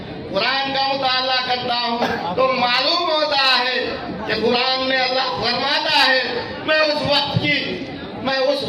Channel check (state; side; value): identical; both; correlation 1.00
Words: قرآن کا مطالعہ کرتا ہوں تو معلوم ہوتا ہے کہ قرآن میں اللہ فرماتا ہے میں اس